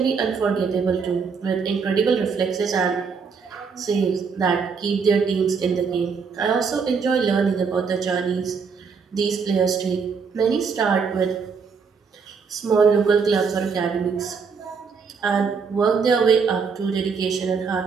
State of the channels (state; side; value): quieter; left; 5.6 dB